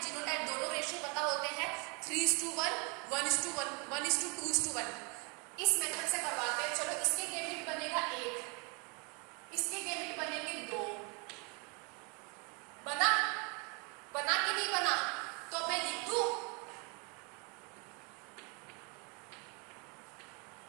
जीनोटाइप दोनों रेशियो पता होते हैं, 3:1, 1:1, 1:2:1। इस मेथड से करवाते हैं। चलो, इसके गैमेट बनेगा 1, इसके गैमेट बनेंगे 2। बना कि नहीं बना? तो मैं लिख दूं,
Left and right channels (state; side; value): quieter; left; 33.2 dB